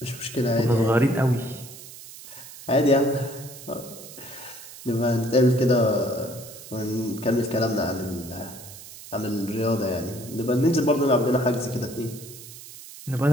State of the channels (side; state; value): right; noise; hiss, 16 dB below the sound